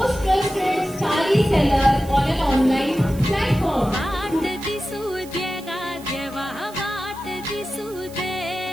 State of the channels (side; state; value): right; noise; hiss, 20 dB below the sound